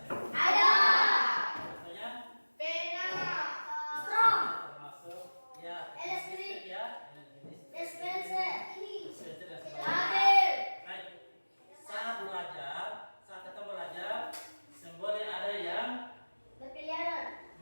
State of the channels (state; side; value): inverted; both; correlation -1.00